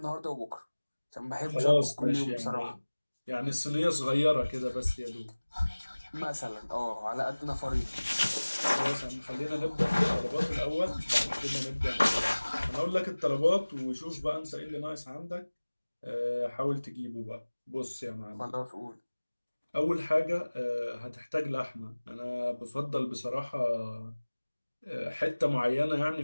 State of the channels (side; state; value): both; inverted; correlation -1.00